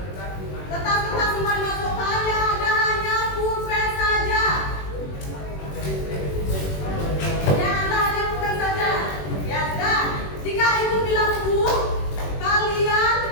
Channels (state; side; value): late; right; 21 ms